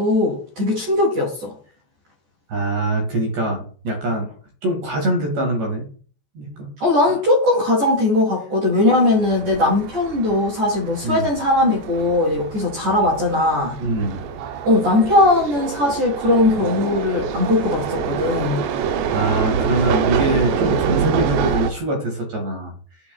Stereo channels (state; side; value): late; left; 14 ms